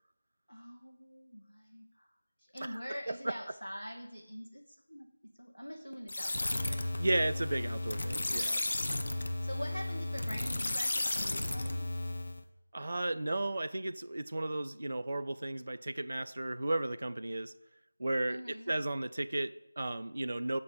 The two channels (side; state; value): both; inverted; correlation -0.97